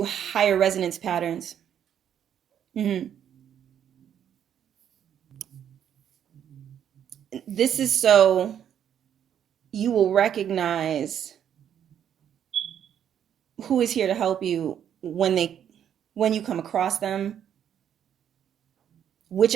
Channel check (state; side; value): quieter; left; 9.4 dB